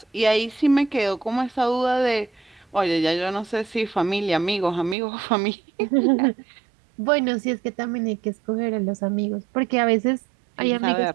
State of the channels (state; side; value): drops out; left; at 5.0 s